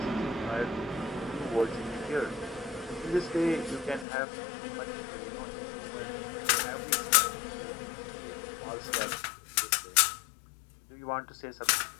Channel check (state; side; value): drops out; right; at 4.0 s